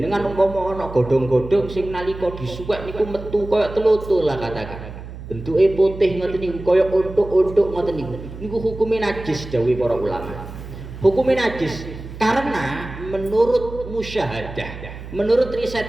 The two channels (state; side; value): noise; right; hum, 12 dB below the sound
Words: umpama ana godhong-godhong sing nalika disuwek niku metu kaya telutul lah katakan. Bentuke putih ngoten niku kaya untuk-untuk ngoten niku. Niku hukume najis dawuh para ulama. Hukume najis karena menurut musyahadah, menurut riset